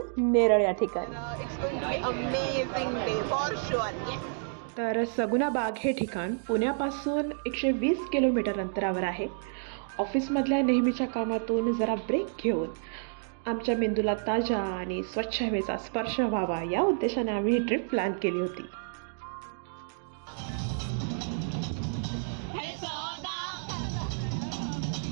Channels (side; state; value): left; silent; digital silence